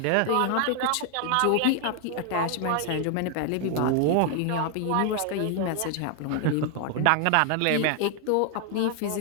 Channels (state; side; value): different; both; correlation 0.00